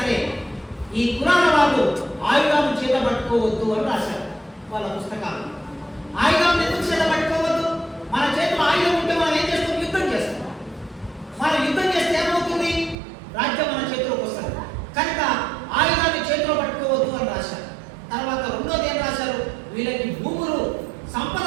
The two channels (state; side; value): drops out; left; at 13.0 s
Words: ఈ కులాల వాళ్ళు ఆయుధాలను చేత పట్టుకోవద్దు అని రాశారు వాళ్ళ పుస్తకాలు. ఆయుధాలను ఎందుకు చేత పట్టుకోవద్దు? మన చేతిలో ఆయుధం ఉంటే మనం ఏం చేస్తాం? యుద్ధం చేస్తాం. మనం యుద్ధం చేస్తే ఏమవుతుంది? రాజ్యం మన చేతిలోకి వస్తుంది. కనుక ఆయుధాన్ని చేతిలో పట్టుకోవద్దు అని రాశారు. తర్వాత రెండోది ఏం రాశారు? వీళ్ళకి భూములు, సంపద